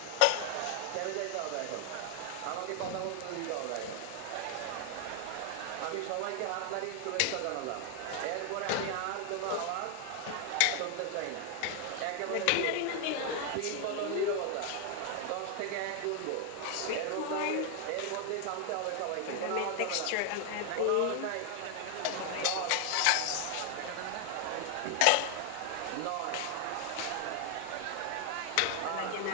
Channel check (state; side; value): different; both; correlation 0.00